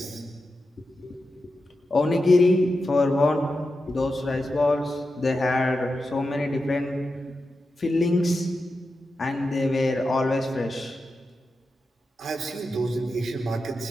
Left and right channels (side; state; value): both; normal; correlation 0.90